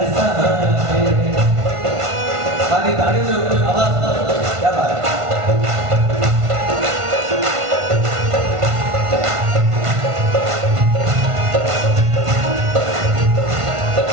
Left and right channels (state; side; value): late; left; 1.5 ms